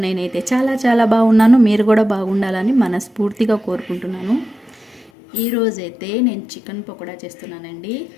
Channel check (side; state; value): right; drops out; at 5.1 s